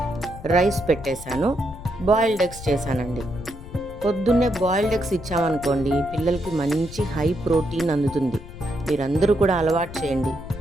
రైస్ పెట్టేశాను. బాయిల్డ్ ఎగ్స్ చేశానండి. పొద్దున్నే బాయిల్డ్ ఎగ్స్ ఇచ్చామనుకోండి, పిల్లలకి మంచి హై ప్రోటీన్ అందుతుంది. మీరందరూ కూడా అలవాటు చేయండి.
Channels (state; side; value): noise; left; rumble, 14 dB below the sound